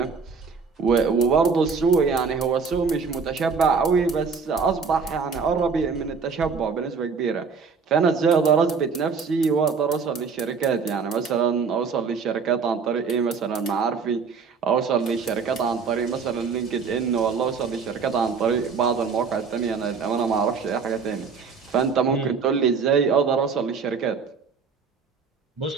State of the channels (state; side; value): quieter; left; 5.4 dB